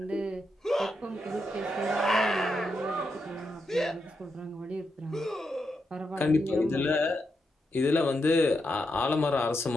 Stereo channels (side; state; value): both; normal; correlation 0.84